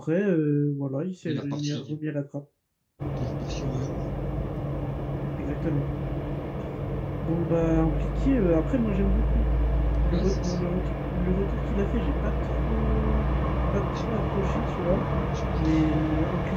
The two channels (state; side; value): identical; both; correlation 1.00